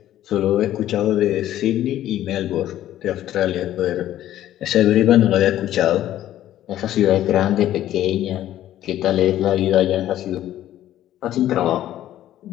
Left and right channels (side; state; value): right; quieter; 12.8 dB